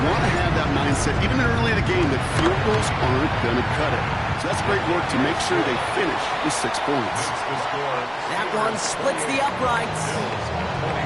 want to have that mindset, even early in the game, that field goals aren't going to cut it. So that's great work to make sure they finish with 6 points. That one splits the uprights.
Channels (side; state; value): both; identical; correlation 1.00